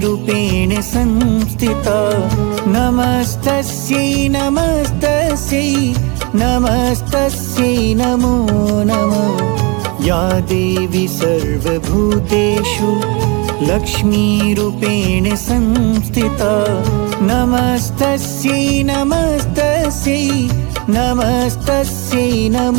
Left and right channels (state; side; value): quieter; left; 29.5 dB